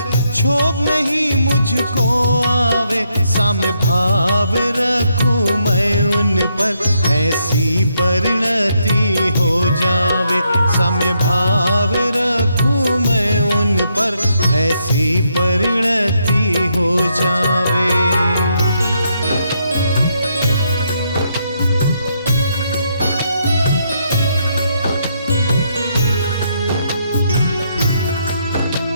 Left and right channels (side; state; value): both; inverted; correlation -0.77